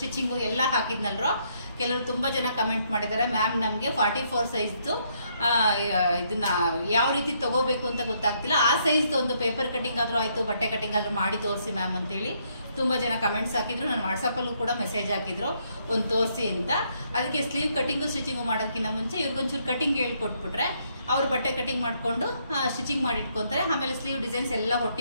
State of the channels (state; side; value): inverted; both; correlation -0.72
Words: ಎಲ್ಲ ಹಾಕಿದ್ನಲ್ರೋ. ಕೆಲವರು ತುಂಬಾ ಜನ ಕಮೆಂಟ್ ಮಾಡಿದ್ದಾರೆ, ಮ್ಯಾಮ್ ನಮ್ಗೆ 44 ಸೈಜ್ದು ಇದನ್ನ ಯಾವ ರೀತಿ ತಗೋಬೇಕು ಅಂತ ಗೊತ್ತಾಗ್ತಿಲ್ಲ, ಆ ಸೈಜ್ದು ಒಂದು ಪೇಪರ್ ಕಟಿಂಗ್ ಆದ್ರೂ ಆಯ್ತು, ಬಟ್ಟೆ ಕಟಿಂಗ್ ಆದ್ರೂ ಮಾಡಿ ತೋರಿಸಿ ಮ್ಯಾಮ್ ಅಂತೇಳಿ ತುಂಬಾ ಜನ ಕಮೆಂಟ್ಸ್ ಹಾಕಿದ್ರು. ನಾನು ವಾಟ್ಸಪ್ ಅಲ್ಲೂ ಕೂಡ ಮೆಸೇಜ್ ಹಾಕಿದ್ರು ಒಂದು ತೋರಿಸಿ ಅಂತ. ಅದಕ್ಕೆ ಸ್ಲೀವ್ ಕಟಿಂಗು ಸ್ಟಿಚಿಂಗು ಮಾಡೋದಕ್ಕಿಂತ ಮುಂಚೆ ಇವ್ರಿಗೊಂಚೂರು ಕಟಿಂಗ್ ಹೇಳ್ಕೊಟ್ಬಿಟ್ರೆ ಅವ್ರು ಬಟ್ಟೆ ಕಟಿಂಗ್ ಮಾಡ್ಕೊಂಡು ಸ್ಟಿಚಿಂಗ್ ಮಾಡಿ ಇಟ್ಕೊಂತಾರೆ. ಆಮೇಲೆ ಸ್ಲೀವ್ ಡಿಸೈನ್ಸ್ ಎಲ್ಲ